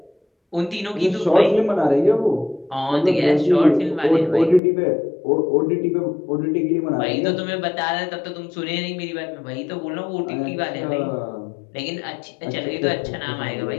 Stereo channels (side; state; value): right; drops out; at 4.6 s